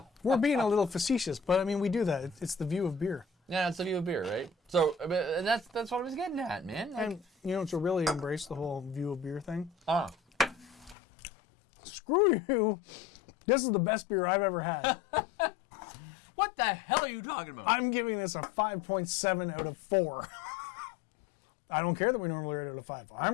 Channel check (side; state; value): right; drops out; at 11.0 s